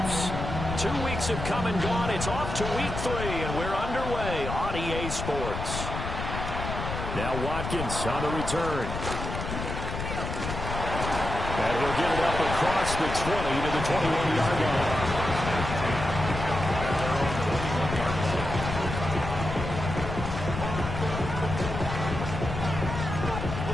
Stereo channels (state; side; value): noise; left; rumble, 5 dB below the sound